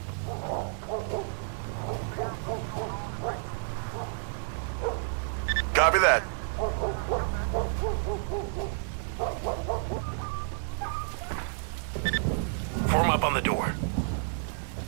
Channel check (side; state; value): left; silent; digital silence